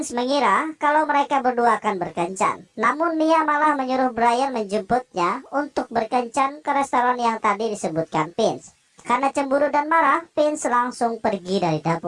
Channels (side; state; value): both; identical; correlation 1.00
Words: mengira kalau mereka berdua akan berkencan. Namun Mia malah menyuruh Brian menjemputnya untuk berkencan ke restoran yang tadi disebutkan Vince. Karena cemburu dan marah, Vince langsung pergi dari